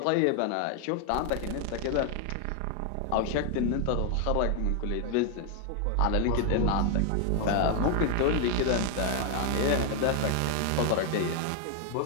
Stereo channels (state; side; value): different; both; correlation 0.01